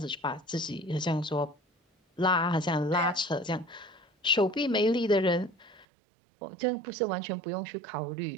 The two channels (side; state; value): left; drops out; at 5.9 s